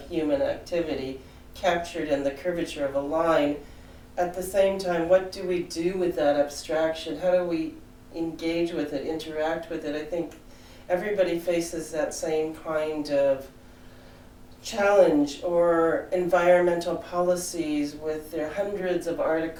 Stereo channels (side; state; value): both; identical; correlation 1.00